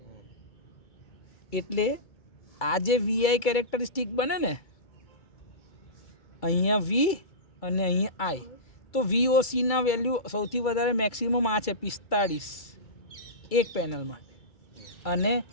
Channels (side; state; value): right; late; 2.3 ms